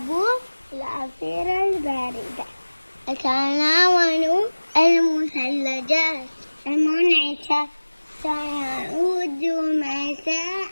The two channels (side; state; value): both; inverted; correlation -1.00